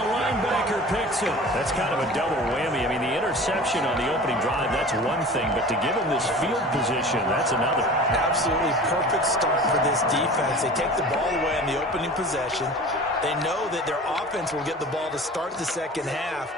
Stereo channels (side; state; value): both; normal; correlation 0.39